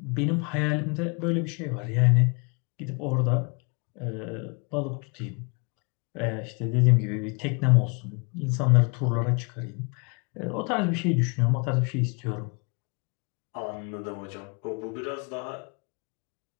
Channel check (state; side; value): quieter; right; 34.2 dB